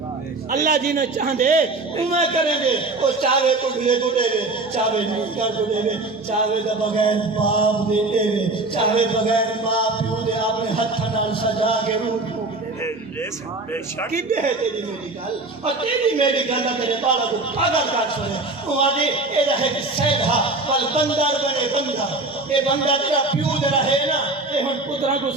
اللہ جنہیں چاندے ہوں میں کریں گے وہ چاہے تو گلے کو دے گے چاہے نکر کو دے گے چاہے دا بغیر باپ دے دے گے چاہے بغیر ماں پیو دے اپنے ہاتھ نال سجا کے روح بے شک کدے ہے تیری میری گل اور تیری میری گل تیرے بالا کو پاگل کر سنے وہ آدھے اے رہے کہ سیدھا پل بندر بنے بندر اے بندر تیرا پیو دے رہے نا اے ہن پترہ کو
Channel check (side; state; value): left; quieter; 3.2 dB